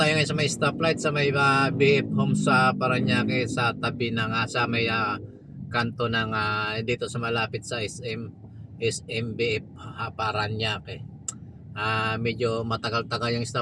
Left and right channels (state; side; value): identical; both; correlation 1.00